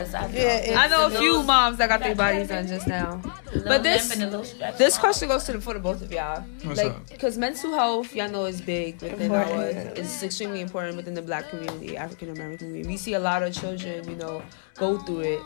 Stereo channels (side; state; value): right; silent; 61 dB below the other